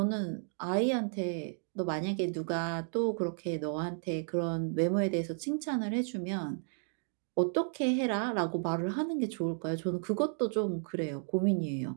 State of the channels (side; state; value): left; silent; 56 dB below the other